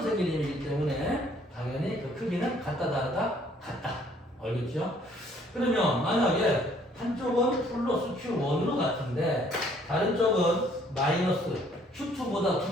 생긴 힘이기 때문에 당연히 그 크기는 같다 다르다 같다. 알겠죠? 그러면 만약에 한쪽은 플러스 Q1으로 같은데 다른 쪽은 마이너스 Q2보다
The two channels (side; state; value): both; normal; correlation 0.61